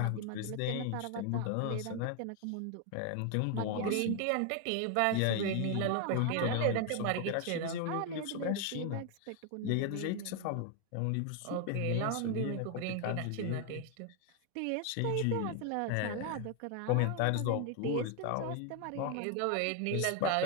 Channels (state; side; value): different; both; correlation 0.00